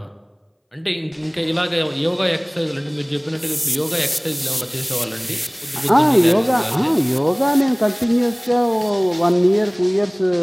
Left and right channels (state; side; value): identical; both; correlation 1.00